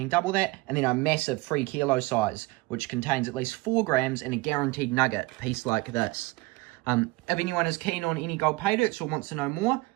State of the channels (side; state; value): left; quieter; 22.5 dB